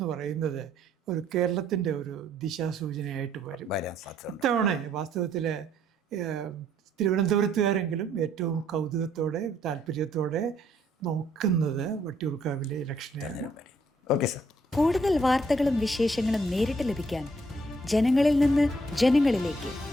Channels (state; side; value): normal; both; correlation 0.68